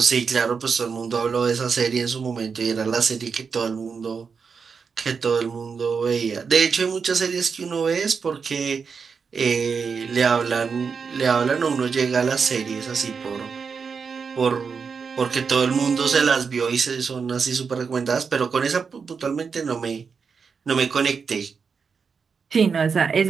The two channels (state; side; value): quieter; left; 5.7 dB